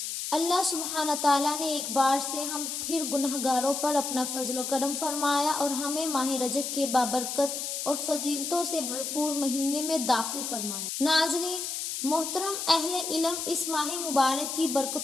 اللہ سبحانہ تعالیٰ نے ایک بار سے ہم پھر گنہگاروں پر اپنا فضل و کرم فرمایا اور ہمیں ماہ رجب کے بابرکت اور فضیلتوں سے بھرپور مہینے میں داخل فرمایا۔ ناظرین محترم، اہل علم اس ماہ مبارک کی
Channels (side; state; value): left; noise; hiss, 4 dB below the sound